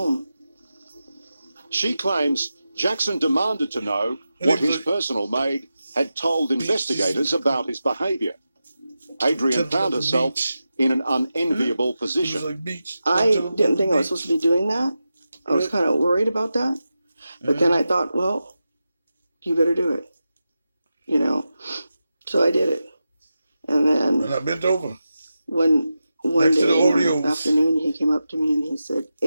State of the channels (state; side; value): inverted; both; correlation -0.91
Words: She claims Jackson demanded to know what his personal maid had told investigators about his behavior. Adrian found herself in an unenviable It was position. like beach. I didn't think I was supposed to be doing that. I was kind of worried about that. But then I thought, well, you better do it. You know, so I did it. And then And I bent over. one Next to day the in Oreos. the afternoon, he came up to me and he said,